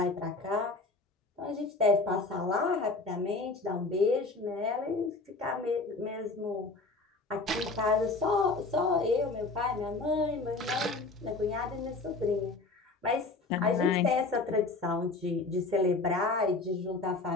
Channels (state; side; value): quieter; right; 3.6 dB